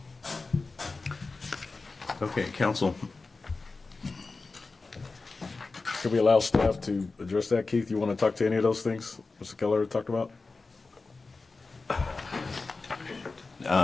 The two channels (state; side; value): quieter; right; 3.8 dB